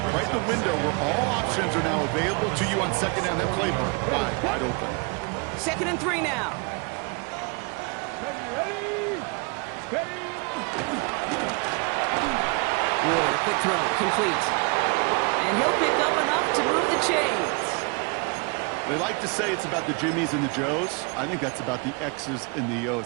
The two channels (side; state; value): left; quieter; 31.8 dB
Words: right in the window where all options are now available to you on 2nd down. That playbook wide open. 2nd and 3 now. Ward, a quick throw, complete. And he'll pick up enough to move the chains. They like to say it's about the Jimmies and the Joes. I think that's about the X's and the O's.